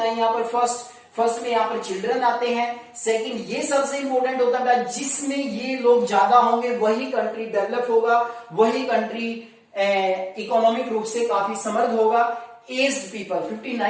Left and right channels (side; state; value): both; identical; correlation 1.00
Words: यहाँ पर। फर्स्ट में यहाँ पर चिल्ड्रन आते हैं। सेकंड ये सबसे इंपॉर्टेंट होता है जिसमें ये लोग ज्यादा होंगे वही कंट्री डेवलप होगा, वही कंट्री इकोनॉमिक रूप से काफी समृद्ध होगा। एज पीपल